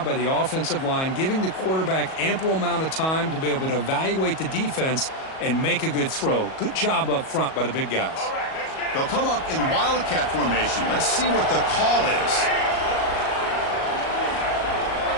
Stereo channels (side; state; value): right; late; 37 ms